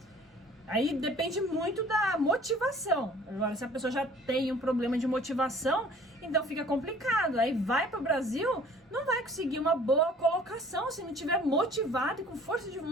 Aí depende muito da motivação. Agora, se a pessoa já tem um problema de motivação, então fica complicado. Aí vai para o Brasil, não vai conseguir uma boa colocação se não tiver motivado e com força de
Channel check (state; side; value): normal; both; correlation 0.51